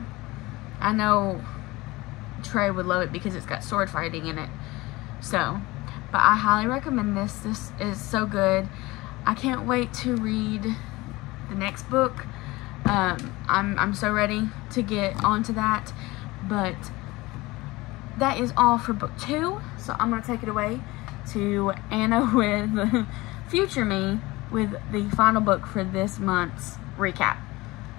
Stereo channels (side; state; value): right; quieter; 20.9 dB